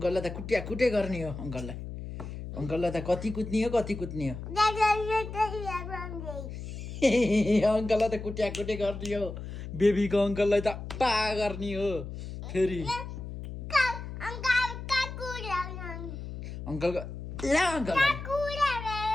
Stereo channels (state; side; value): noise; left; hum, 9 dB below the sound